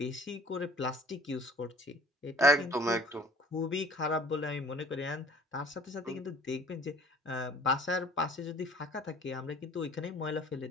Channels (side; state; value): both; normal; correlation 0.51